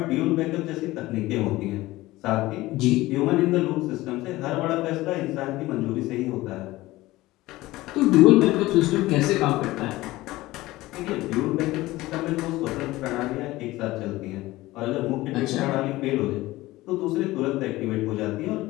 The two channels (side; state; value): right; quieter; 18.3 dB